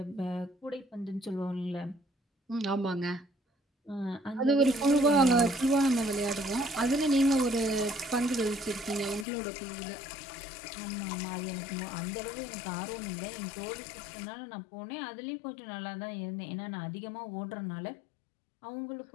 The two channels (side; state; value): right; drops out; at 9.2 s